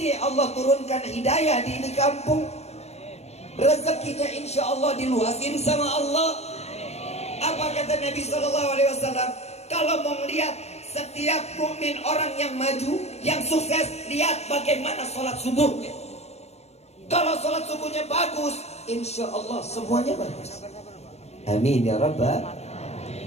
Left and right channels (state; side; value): late; right; 0.31 ms